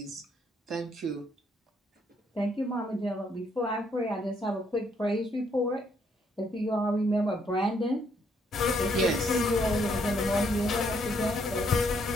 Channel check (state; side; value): normal; both; correlation 0.71